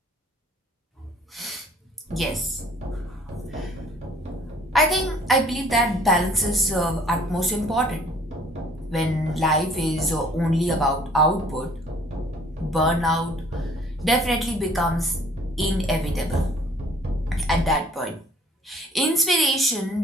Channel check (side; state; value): both; normal; correlation 0.56